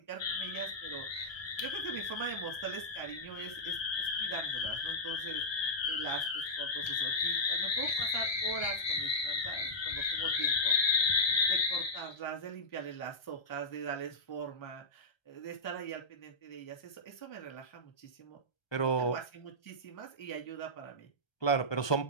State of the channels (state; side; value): late; right; 1.3 ms